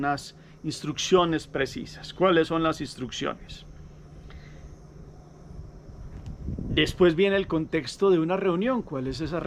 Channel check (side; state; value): both; identical; correlation 1.00